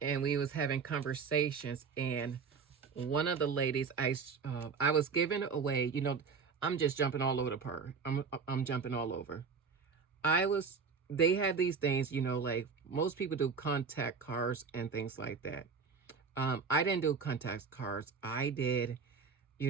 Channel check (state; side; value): quieter; left; 5.5 dB